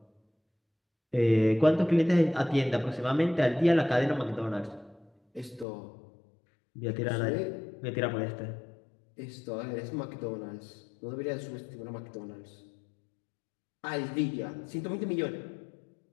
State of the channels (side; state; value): right; drops out; at 5.7 s